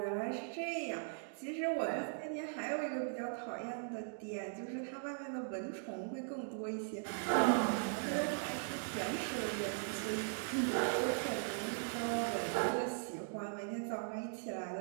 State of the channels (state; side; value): silent; left; digital silence